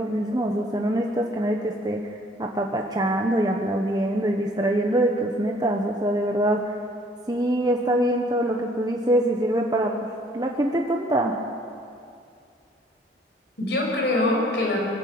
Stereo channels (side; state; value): both; normal; correlation 0.59